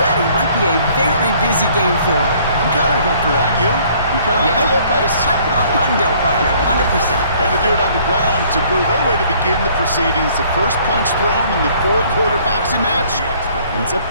Might be a very busy game for them. I'm kind of up for that. You kind of like that little pace? A hundo, partner, 100%. And to do it on the ground, to boot. What a way to begin the proceedings. The first punch thrown in the 4-quarter boxing match ends up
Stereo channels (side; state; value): both; inverted; correlation -0.59